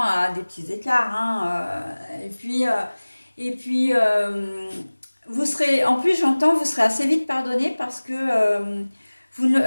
à des petits écarts, hein, et puis, vous serez, en plus, j'entends, vous serez assez vite pardonné parce que vous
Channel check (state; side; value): inverted; both; correlation -1.00